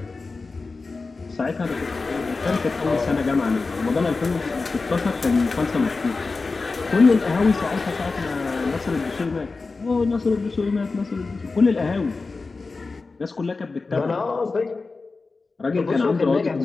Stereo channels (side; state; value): right; quieter; 4.0 dB